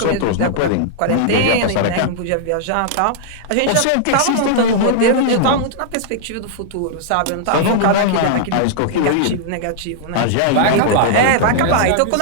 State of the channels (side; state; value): both; different; correlation -0.01